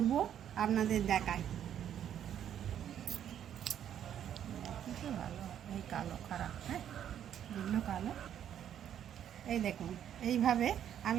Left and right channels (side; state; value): left; quieter; 9.9 dB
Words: আপনাদের দেখাই। ভালো, এই কালো খারাপ, হ্যাঁ এগুলো কালো। এই দেখুন, এইভাবে